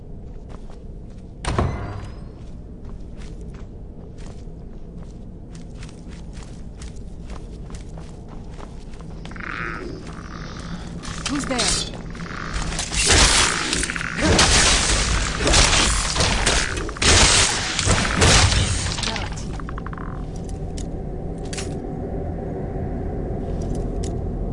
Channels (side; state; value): both; identical; correlation 1.00